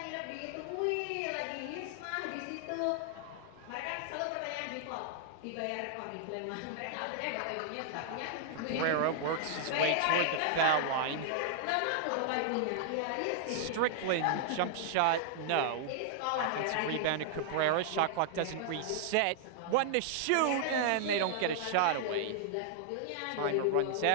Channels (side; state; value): both; different; correlation -0.01